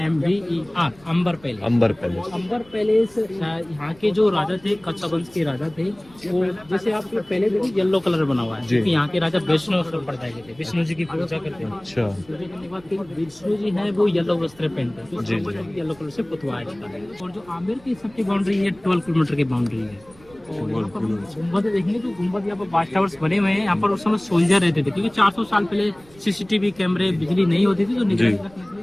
अंबर पैलेस। अंबर पैलेस। अंबर पैलेस यहाँ के जो राजा थे, कच्छा वंश के राजा थे, वो जैसे आप पहले देखिए येलो कलर बना हुआ है, क्योंकि यहाँ के राजा वैष्णव संप्रदाय के थे, विष्णु जी की पूजा करते हैं। अच्छा। पूजा करने के बाद विष्णु जी है वो येलो वस्त्र पहनते हैं, तो येलो कलर से पुतवाया जाता है। और जो आमिर की सबकी बाउंड्री है 12 किलोमीटर की बाउंड्री है। और यहाँ पर गुम्बद देखेंगे तो गुम्बद यहाँ पर वाच टावर्स बने हुए हैं। यहाँ पर उस समय सोल्जर रहते थे, क्योंकि 400 साल पहले CCTV कैमरे, बिजली नहीं होती थी, तो निगरानी रखने के लिए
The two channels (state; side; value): noise; right; rumble, 26 dB below the sound